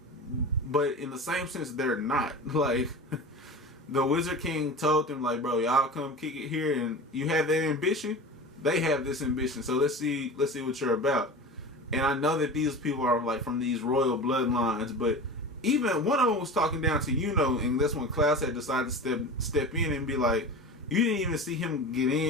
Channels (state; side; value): normal; both; correlation 0.31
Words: but in the same sense, they're not. Like, the Wizard King told them, like, bro, y'all come kick it here, and you have that ambition. They have this ambition, so let's see what you're about. And I know that these people are like from these royal bloodlines, but even one of them was talking down to and that's when Klaus had decided to step in and be like, you didn't even see him get